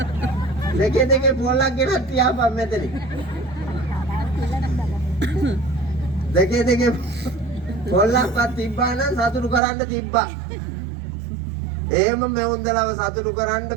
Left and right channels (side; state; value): left; drops out; at 9.6 s